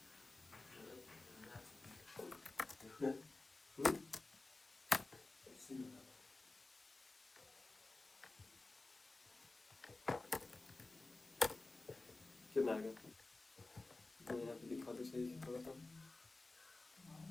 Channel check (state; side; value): quieter; right; 3.2 dB